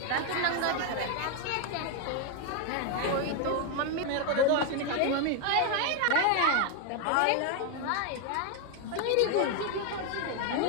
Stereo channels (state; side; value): different; both; correlation 0.01